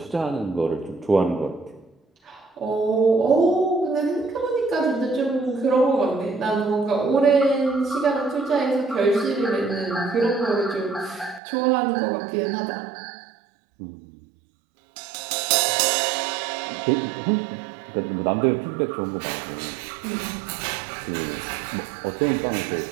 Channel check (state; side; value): drops out; left; at 11.4 s